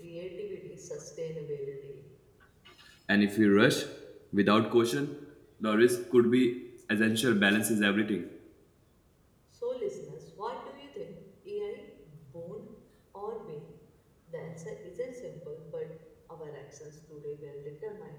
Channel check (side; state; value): both; identical; correlation 1.00